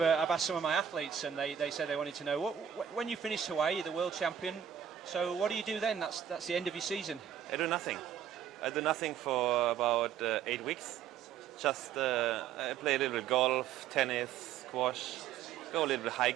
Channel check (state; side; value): quieter; left; 9.0 dB